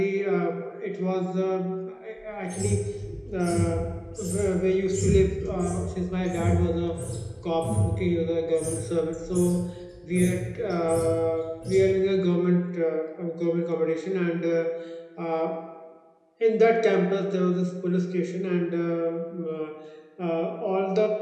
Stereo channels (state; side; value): identical; both; correlation 1.00